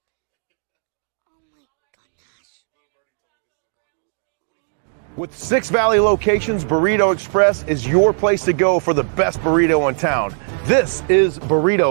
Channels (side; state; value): left; silent; digital silence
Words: With 6 Valley locations, Burrito Express is your place to go for the best burrito in town. This is